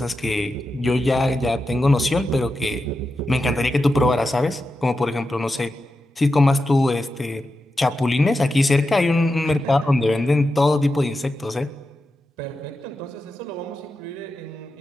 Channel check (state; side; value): normal; both; correlation 0.89